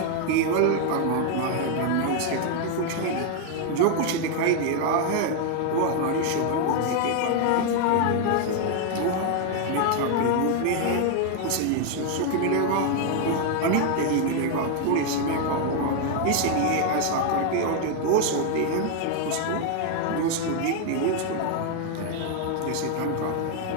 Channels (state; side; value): different; both; correlation 0.00